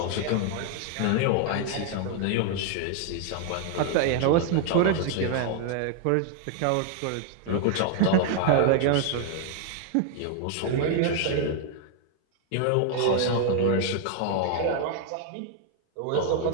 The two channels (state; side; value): different; both; correlation 0.00